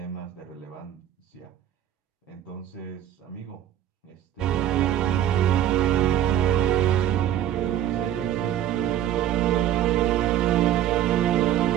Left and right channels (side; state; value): left; quieter; 11.3 dB